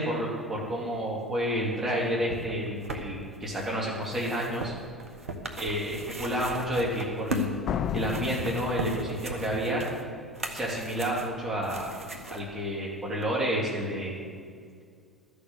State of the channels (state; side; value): normal; both; correlation 0.38